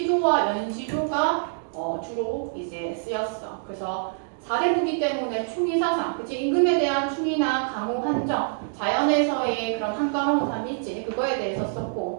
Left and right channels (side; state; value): left; silent; digital silence